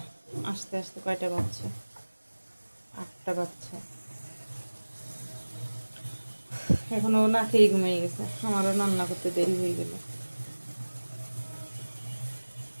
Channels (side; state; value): both; inverted; correlation -1.00